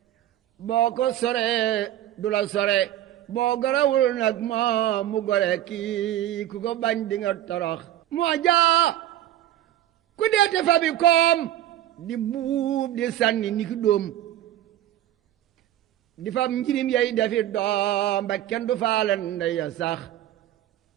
boo ko soree du la sore boo gorawul nag moo mu gore kii ku ko bañ di nga torox moo jaa ku deete fa bi koom di buub di sànni ni ki dóom di fam njirim yey defi doom ba kenn du faale ndey ya sax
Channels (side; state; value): left; quieter; 12.8 dB